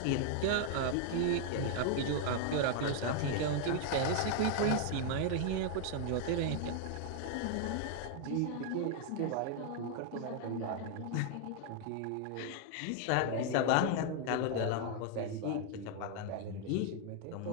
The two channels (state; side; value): different; both; correlation 0.00